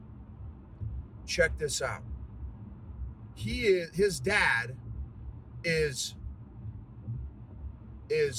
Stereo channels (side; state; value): both; identical; correlation 1.00